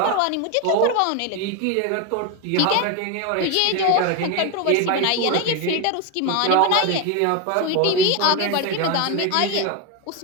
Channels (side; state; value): both; different; correlation 0.02